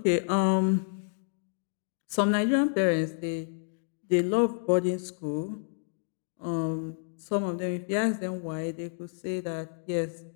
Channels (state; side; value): silent; right; digital silence